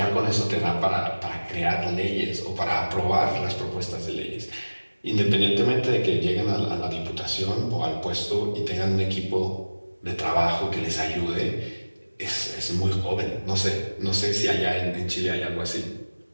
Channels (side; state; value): both; inverted; correlation -1.00